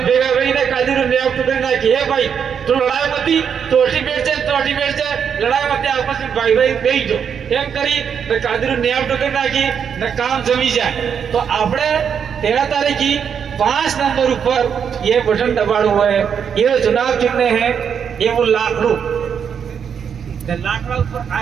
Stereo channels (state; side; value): quieter; left; 7.4 dB